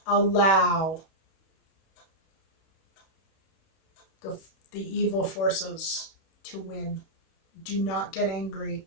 allow the the evil forces to win. Do not get angry.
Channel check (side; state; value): right; late; 31 ms